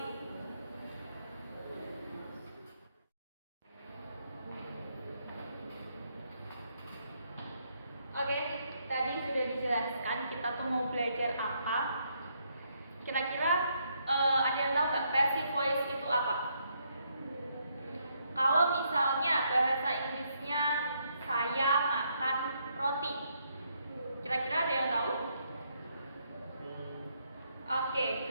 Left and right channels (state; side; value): inverted; both; correlation -0.75